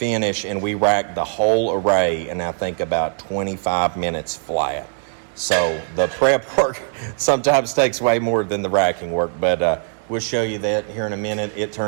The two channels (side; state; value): left; silent; 65 dB below the other